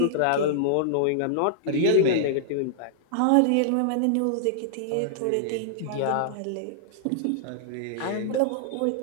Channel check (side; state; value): both; different; correlation -0.01